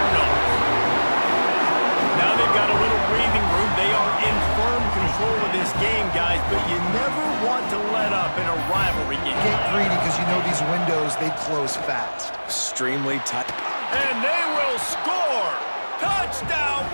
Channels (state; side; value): inverted; both; correlation -1.00